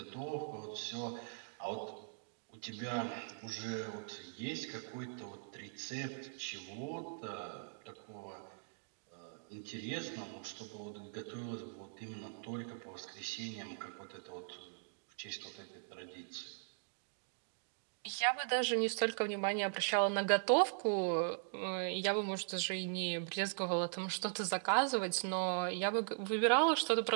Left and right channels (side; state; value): left; silent; digital silence